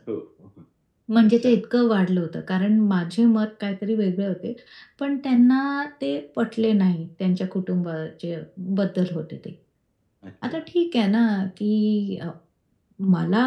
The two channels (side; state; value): both; identical; correlation 1.00